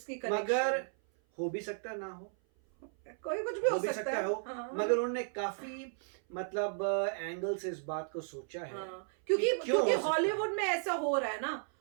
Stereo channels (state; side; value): silent; left; 55 dB below the other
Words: मगर हो भी सकता है ना हो, कोई कुछ भी हो सकता है। हाँ। मगर उन्होंने काफी मतलब एंगल से इस बात को सोचा है। क्योंकि हॉलीवुड में ऐसा हो रहा है ना,